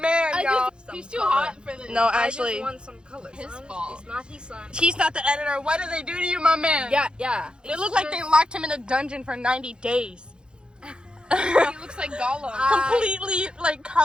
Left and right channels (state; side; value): late; left; 0.051 ms